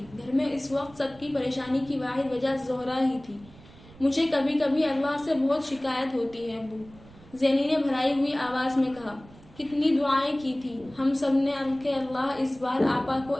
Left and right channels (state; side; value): noise; right; rumble, 22 dB below the sound